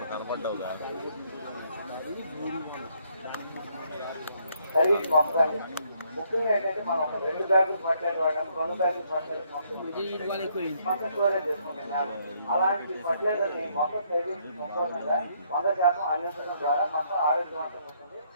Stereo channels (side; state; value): both; inverted; correlation -0.70